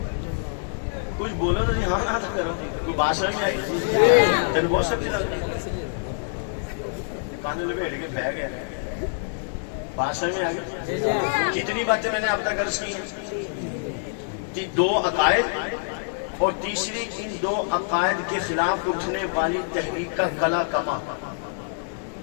کچھ بولو تو ہاں نہ کرو. کوئی بات سمجھ میں آئی؟ تین بہت سب چیز کانے لپیٹ کے بہ گیا. بات سمجھ میں آ گئی؟ کتنی باتیں میں نے اب تک عرض کی ہیں؟ 2 عقائد اور تیسری ان 2 عقائد کے خلاف اٹھنے والی تحریک کا کلا کما.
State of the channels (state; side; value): silent; right; digital silence